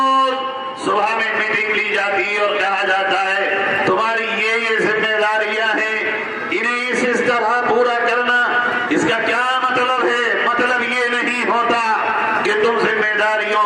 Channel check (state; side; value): identical; both; correlation 1.00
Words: صبح میں میٹنگ لی جاتی ہے اور کہا جاتا ہے تمہاری یہ ذمہ داریاں ہیں، انہیں اس طرح پورا کرنا۔ اس کا کیا مطلب ہے؟ مطلب یہ نہیں ہوتا کہ تم ذمہ داریوں